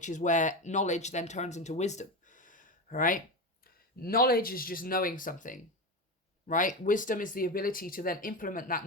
is where knowledge then turns into wisdom. All right? Knowledge is just knowing something, right? Wisdom is the ability to then implement that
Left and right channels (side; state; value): both; normal; correlation 0.19